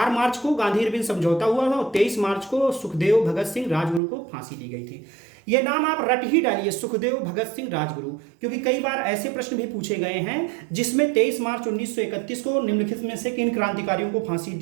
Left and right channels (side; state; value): left; drops out; at 4.0 s